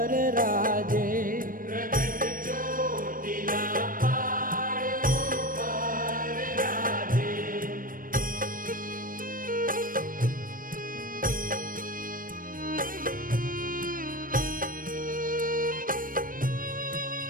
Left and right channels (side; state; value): left; late; 0.40 ms